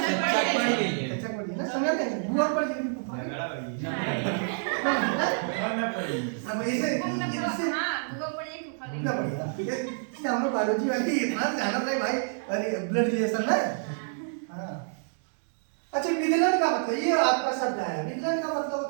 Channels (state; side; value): silent; left; digital silence